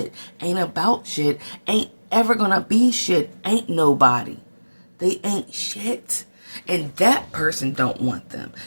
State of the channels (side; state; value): both; inverted; correlation -1.00